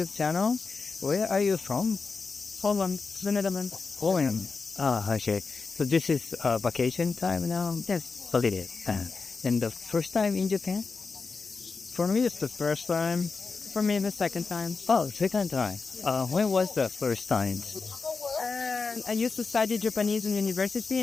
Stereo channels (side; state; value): right; quieter; 4.5 dB